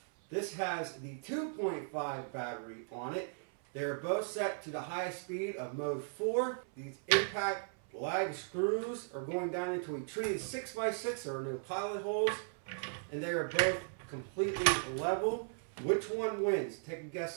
This has the 2.5 battery on it. They're both set to the highest speed of mode 4. These impact lag screws are going down into a treated 6x6 or no pilot holes, and they are both completely level. Which one wins? Take a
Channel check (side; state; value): left; silent; 53 dB below the other